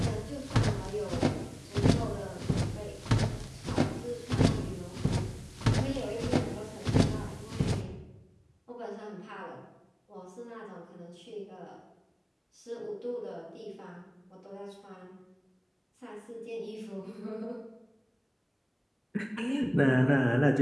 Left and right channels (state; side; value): identical; both; correlation 1.00